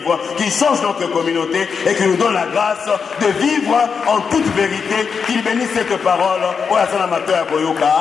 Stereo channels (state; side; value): quieter; right; 6.0 dB